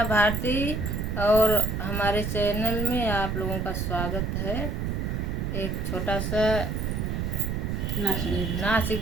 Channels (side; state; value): right; noise; rumble, 1 dB below the sound